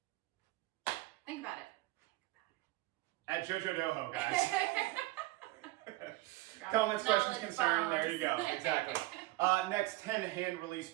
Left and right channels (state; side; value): quieter; left; 19.3 dB